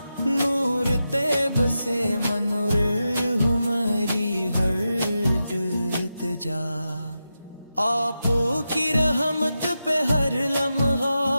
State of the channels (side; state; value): both; inverted; correlation -0.90